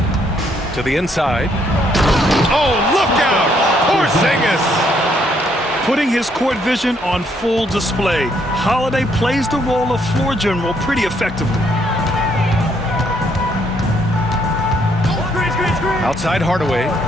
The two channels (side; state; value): both; normal; correlation 0.70